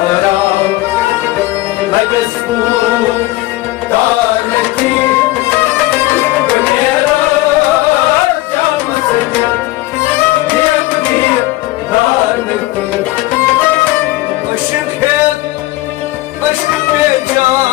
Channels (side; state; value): right; quieter; 18.3 dB